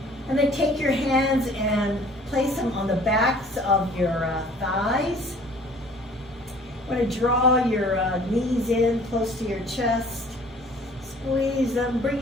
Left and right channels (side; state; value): both; normal; correlation 0.52